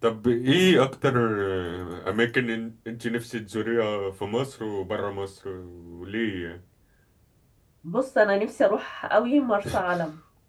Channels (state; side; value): identical; both; correlation 1.00